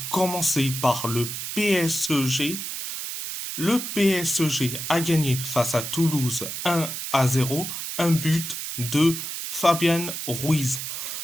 commencer par le PSG. Le PSG a gagné face à Toulouse 1-0, un but de Fabien Ruiz.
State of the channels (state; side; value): noise; right; hiss, 5 dB below the sound